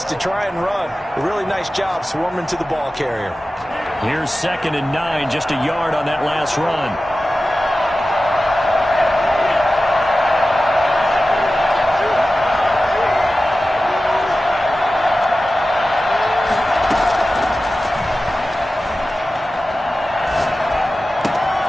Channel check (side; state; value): both; normal; correlation 0.95